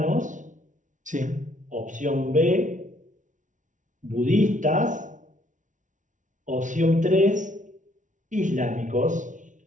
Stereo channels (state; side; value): late; left; 0.37 ms